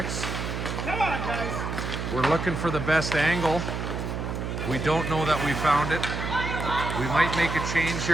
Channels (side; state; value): right; noise; hum, 4 dB below the sound